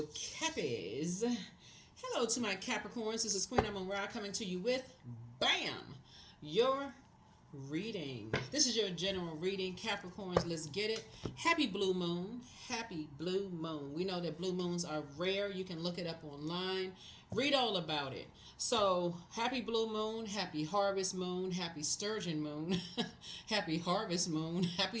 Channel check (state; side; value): identical; both; correlation 1.00